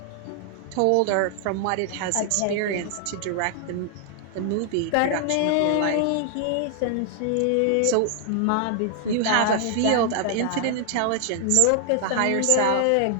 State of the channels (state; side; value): different; both; correlation 0.00